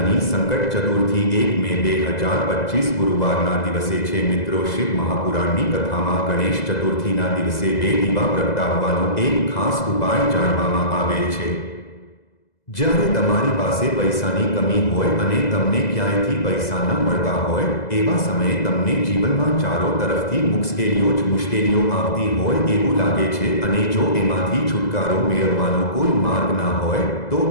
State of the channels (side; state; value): right; late; 2.0 ms